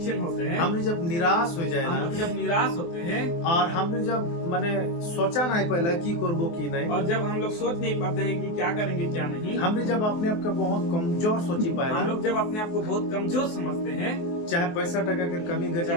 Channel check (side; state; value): right; late; 24 ms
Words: होते हैं, हम जब निराश हो हम जाएगा, लोग जब निराश होते हैं और हम जब माने सोचा नहीं पहले की करबो की नहीं, और जब हम लोग सोच नहीं पाते हैं कि क्या करेंगे क्या नहीं, हमने जब अपने आप को बहुत कमजोर सोची पाए, हम लोग जब अपने आप को बहुत कमजोर समझते हैं, चाहे पैसा टका के कमी घटी,